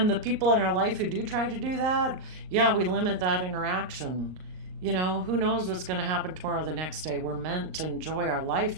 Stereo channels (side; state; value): left; late; 38 ms